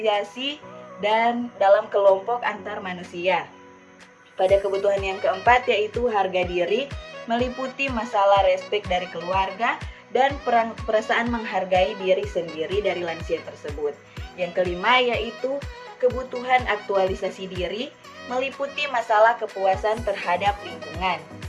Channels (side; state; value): both; identical; correlation 1.00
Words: dan dalam kelompok antar manusia. Pada kebutuhan yang keempat yaitu harga diri, meliputi masalah respek dari keluarga, dan perasaan menghargai diri sendiri dari lansia tersebut. Yang kelima yaitu kebutuhan aktualisasi diri, meliputi masalah kepuasan terhadap lingkungan.